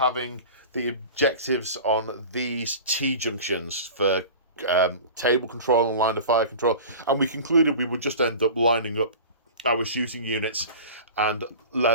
the objectives on these T-junctions for table control and line of fire control, and we concluded we would just end up lining up our shooting units and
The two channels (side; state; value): both; inverted; correlation -0.37